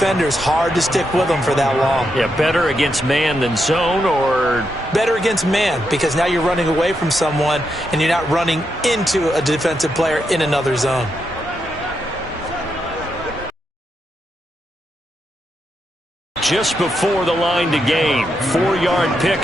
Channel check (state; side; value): normal; both; correlation 0.83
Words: Hard to stick with them for that long. Yeah, better against man than zone, or? Better against man, because now you're running away from someone and you're not running into a defensive player in another zone. Just before the line to gain. 4-yard